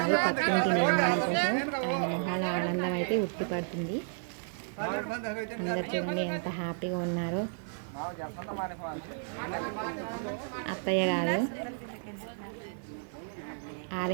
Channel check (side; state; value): left; silent; digital silence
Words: పక్కింటి నిర్మాణం కోసం ఆయన మొహాల ఆనందం అయితే ఉట్టిపడుతుంది. అందరు చూడండి ఎంత హ్యాపీగా ఉన్నారో. అత్తయ్య గారు